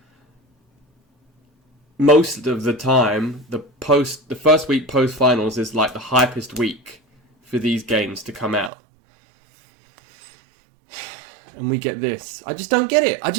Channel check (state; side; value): drops out; left; at 8.7 s